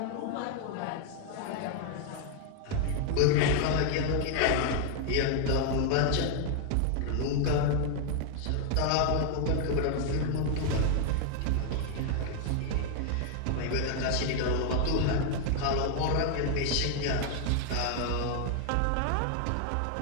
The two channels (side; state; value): both; different; correlation 0.00